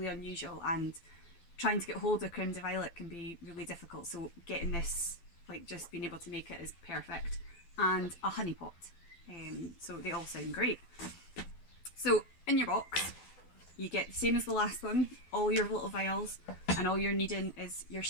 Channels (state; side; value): late; right; 12 ms